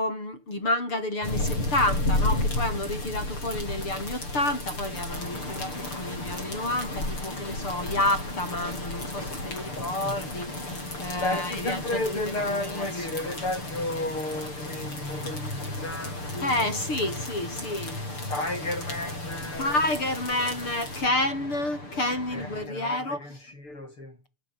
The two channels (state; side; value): late; right; 6.8 ms